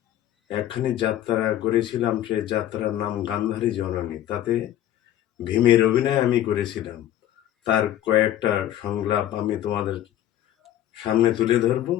একখানি যাত্রা করেছিলাম। সে যাত্রার নাম গান্ধারী জননী। তাতে ভীমের অভিনয় আমি করেছিলাম। তার কয়েকটা সংলাপ আমি তোমাদের সামনে তুলে ধরব,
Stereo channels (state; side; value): quieter; right; 12.4 dB